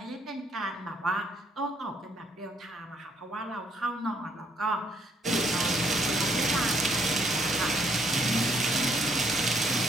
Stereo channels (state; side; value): normal; both; correlation 0.68